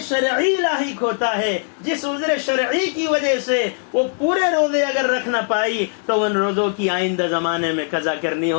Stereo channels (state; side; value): silent; right; 58 dB below the other